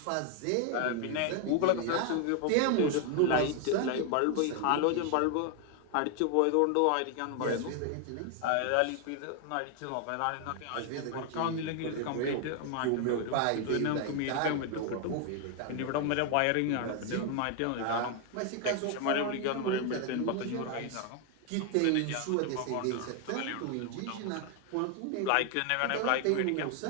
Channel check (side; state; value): both; different; correlation 0.00